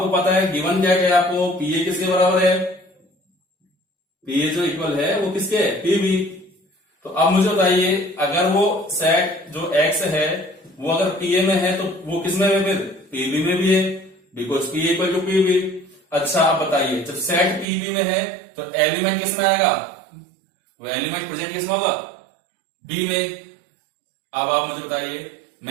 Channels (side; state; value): left; drops out; at 17.7 s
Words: पता है गिवन क्या है आपको, pa किसके बराबर है, pa जो इक्वल है वो किसके है, pb। तो अब मुझे बताइए अगर वो सेट जो x है वो अगर pa में है तो वो किस में है, फिर pb में भी है, because pa equal to pb। अच्छा आप बताइए जब सेट pb में है तो एलिमेंट किस में आएगा, वो एलिमेंट प्रेजेंट किस में होगा, b में। अब आप मुझे बताइए